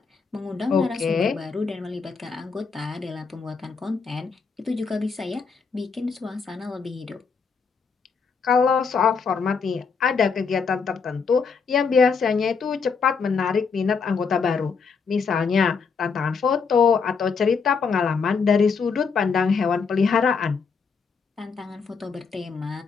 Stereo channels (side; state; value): right; quieter; 5.4 dB